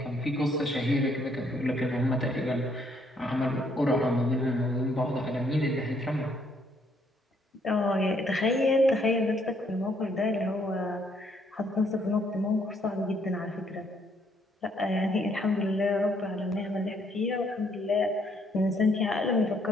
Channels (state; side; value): normal; both; correlation 0.69